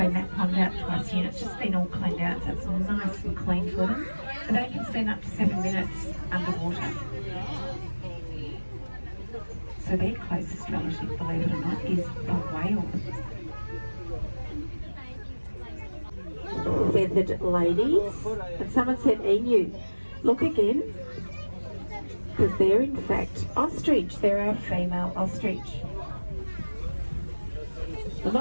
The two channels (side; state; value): both; inverted; correlation -1.00